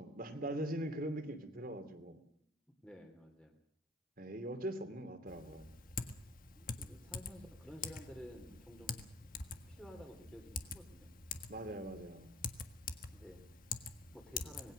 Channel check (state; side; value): normal; both; correlation 0.50